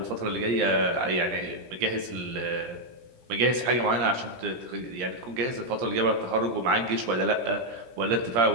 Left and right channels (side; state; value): left; late; 17 ms